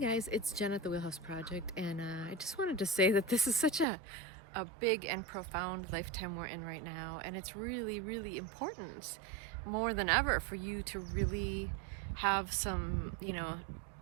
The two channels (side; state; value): left; drops out; at 3.9 s